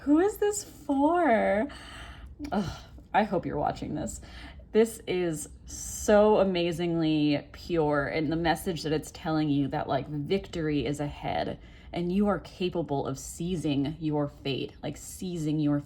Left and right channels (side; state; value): both; identical; correlation 1.00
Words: is this for? Ugh, I hope you're watching this. This is so amazingly pure, and the message that it's telling you that like victory is ahead and you are capable of seizing your fate, like seizing your